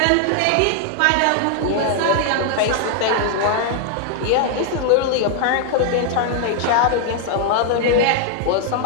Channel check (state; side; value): different; both; correlation 0.00